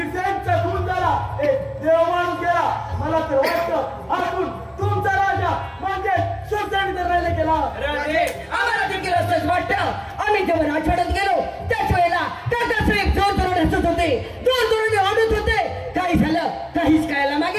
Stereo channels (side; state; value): both; identical; correlation 1.00